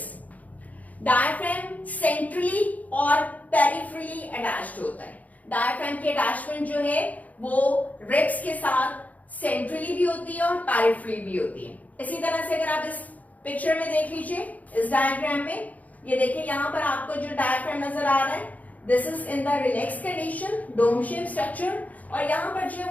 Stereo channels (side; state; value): right; late; 0.075 ms